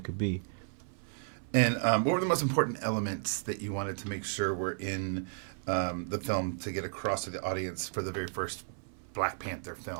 could be. And what were the most important elements that you wanted to make sure were in the film to get across to the audience for the very first Black Panther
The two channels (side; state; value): left; silent; 56 dB below the other